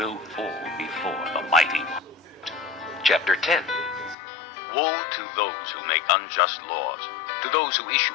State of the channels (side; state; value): right; drops out; at 4.2 s